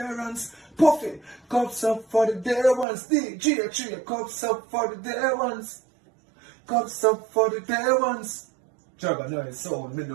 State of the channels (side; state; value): left; drops out; at 2.9 s